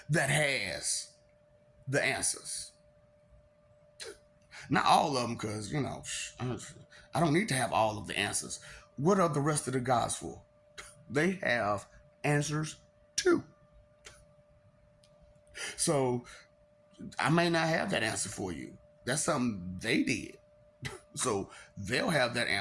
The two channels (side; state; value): both; identical; correlation 1.00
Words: that has the answers. Not all of them, because, I don't need to have all of the answers. What are the rest of the gods for? They have answers too. So I may not have that answer for you. That's something they did. So they'll have that